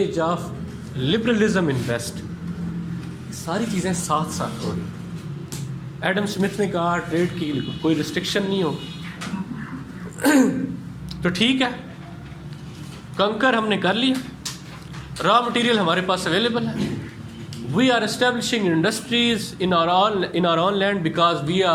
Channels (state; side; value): identical; both; correlation 1.00